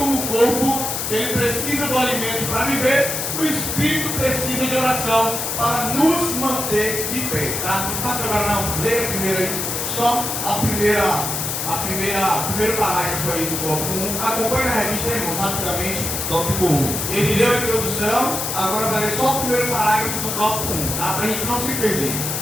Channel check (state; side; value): noise; left; hiss, 2 dB below the sound